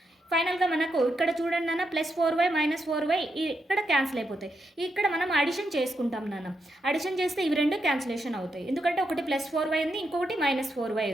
ఫైనల్గా మనకు ఇక్కడ చూడండి నాన్న ప్లస్ 4y మైనస్ 4y ఇక్కడ క్యాన్సిల్ అయిపోతాయి. ఇక్కడ మనం అడిషన్ చేసుకుంటాం నాన్న. అడిషన్ చేస్తే ఇవి రెండు క్యాన్సిలేషన్ అవుతాయి, ఎందుకంటే ఒకటి ప్లస్ 4y ఉంది, ఇంకొకటి మైనస్ 4y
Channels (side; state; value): both; normal; correlation 0.83